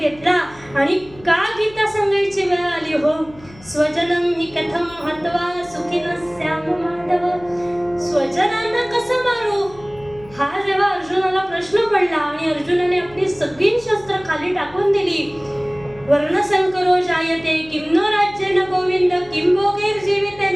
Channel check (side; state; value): left; noise; hum, 22 dB below the sound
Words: आणि का गीता सांगायची वेळ आली हो. स्वजनम हि कथम हत्वा सुखिन स्याम माधव. स्वजनांना कसं मारू हा जेव्हा अर्जुनाला प्रश्न पडला आणि अर्जुनाने आपली सगळी शस्त्र खाली टाकून दिली. वर्णसंकरो जायते किं नो राज्येन गोविंद किं भोगैर्जीवितेन